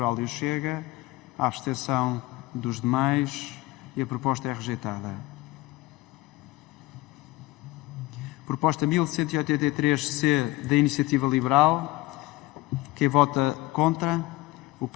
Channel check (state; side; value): quieter; right; 19.8 dB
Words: e o Chega. A abstenção dos demais e a proposta é rejeitada. Proposta 1183C da Iniciativa Liberal. Quem vota contra? O